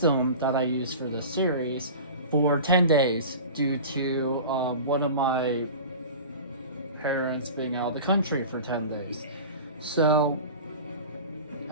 that I use for this series for 10 days due to one of my parents being out of the country for 10 days. So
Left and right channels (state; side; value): inverted; both; correlation -0.36